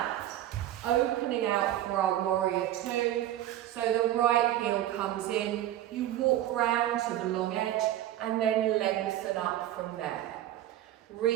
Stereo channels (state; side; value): quieter; left; 13.0 dB